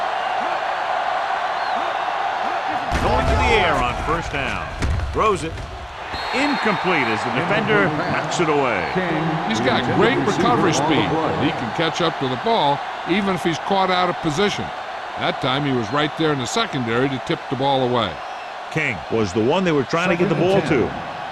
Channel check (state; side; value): identical; both; correlation 1.00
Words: Going to the air on 1st down. Throws it. Incomplete as the defender knocks it away. He's got great recovery speed. He can catch up to the ball even if he's caught out of position. That time he was right there in the secondary to tip the ball away. King was the one they were trying to get the ball to.